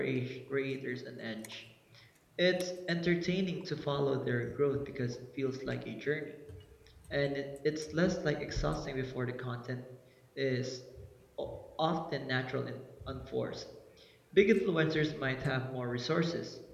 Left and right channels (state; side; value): identical; both; correlation 1.00